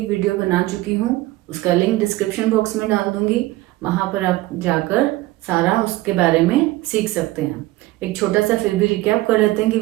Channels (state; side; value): quieter; left; 18.2 dB